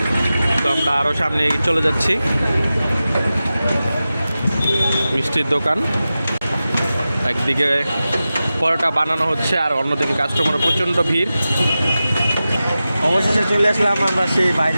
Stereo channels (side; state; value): both; inverted; correlation -0.94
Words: তো আমরা আরও সামনে এগিয়ে চলে যাচ্ছি। মিষ্টির দোকান, একদিকে পরোটা বানানো হচ্ছে আর অন্যদিকে কাস্টমারের প্রচণ্ড ভিড়। অবশেষে চলে আসলাম আমরা সেই